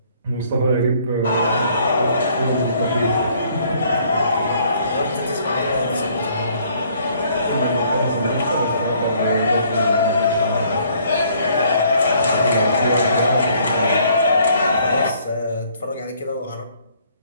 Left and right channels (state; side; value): inverted; both; correlation -0.63